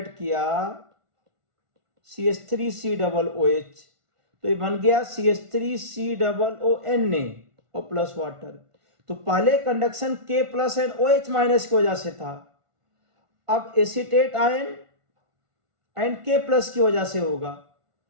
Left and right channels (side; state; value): left; late; 1.5 ms